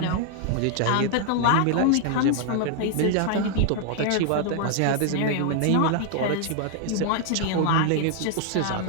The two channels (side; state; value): both; different; correlation 0.00